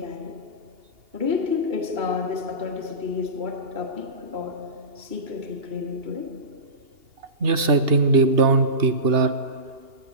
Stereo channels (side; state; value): left; late; 2.8 ms